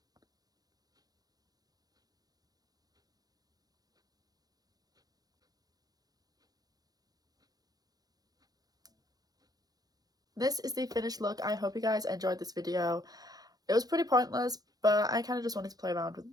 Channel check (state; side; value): late; left; 0.19 ms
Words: This is the finished look. I hope you guys enjoyed this video. It was pretty pointless, but I kind of just wanted to play around with